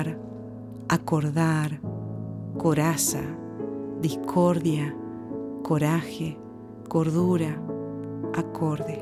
acordar, coraza, discordia, coraje, cordura,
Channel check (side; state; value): both; identical; correlation 1.00